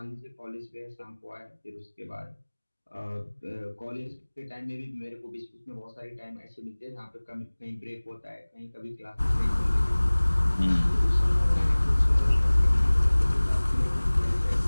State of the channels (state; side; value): inverted; both; correlation -1.00